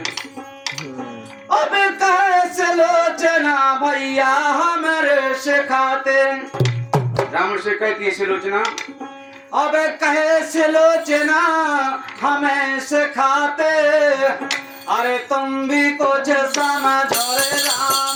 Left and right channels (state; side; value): identical; both; correlation 1.00